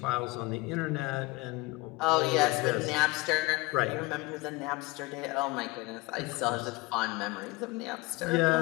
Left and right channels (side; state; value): right; quieter; 22.5 dB